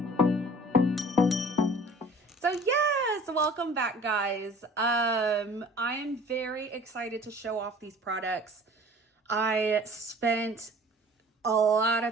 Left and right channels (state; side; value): normal; both; correlation 0.48